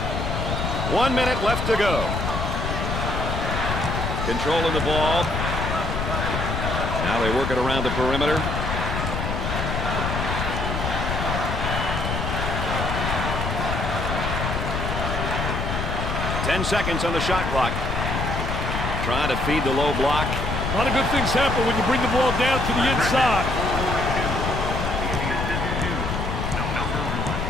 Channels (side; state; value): left; noise; rumble, 2 dB below the sound